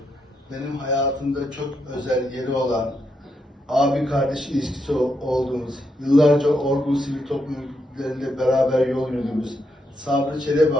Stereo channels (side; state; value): both; normal; correlation 0.81